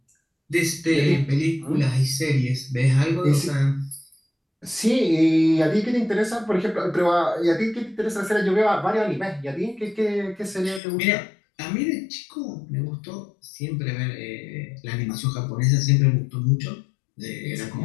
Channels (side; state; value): right; drops out; at 10.8 s